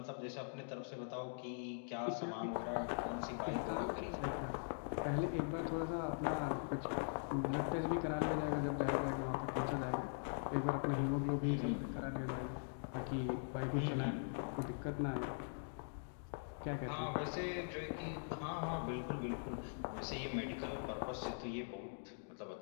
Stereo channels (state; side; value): silent; right; digital silence